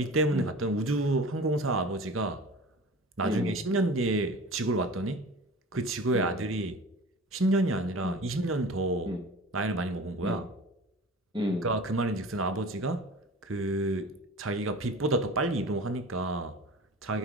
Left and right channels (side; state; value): both; normal; correlation 0.39